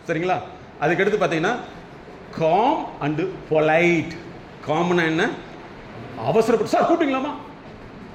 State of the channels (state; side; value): identical; both; correlation 1.00